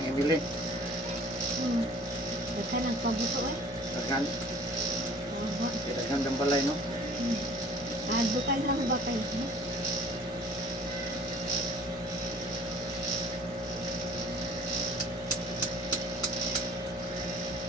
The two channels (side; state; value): both; normal; correlation 0.51